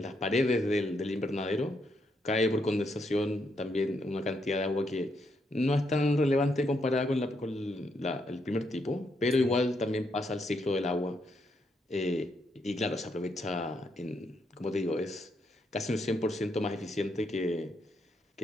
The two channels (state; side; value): normal; both; correlation 0.78